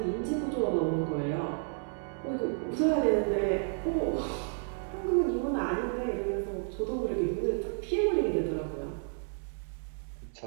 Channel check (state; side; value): silent; left; 57 dB below the other